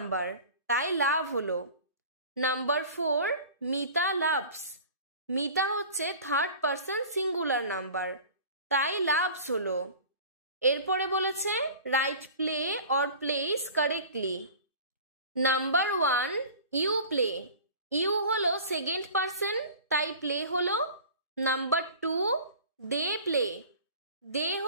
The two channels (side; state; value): both; inverted; correlation -0.41